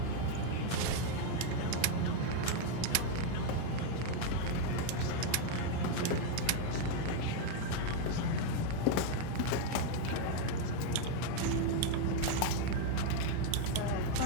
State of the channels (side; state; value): both; different; correlation 0.01